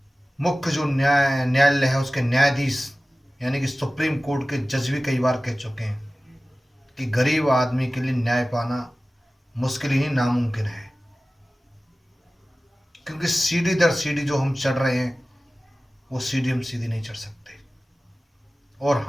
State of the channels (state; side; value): normal; both; correlation 0.97